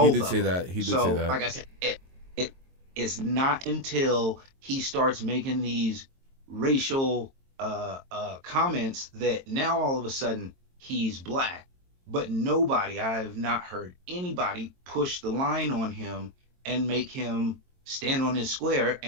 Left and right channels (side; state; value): left; late; 22 ms